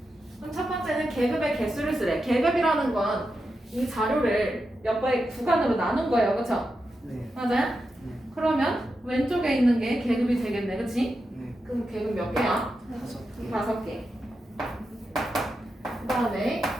그럼 첫 번째는 계급의 개수를 쓰래. 계급이라는 건 이 자료를 몇 번의 구간으로 나눈 거예요. 그쵸? 네. 맞아요? 네. 그러면 왼쪽에 있는 게 계급이 되겠네. 그치? 네. 그럼 계급 몇 개야? 5개. 그 다음에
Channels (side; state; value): both; normal; correlation 0.88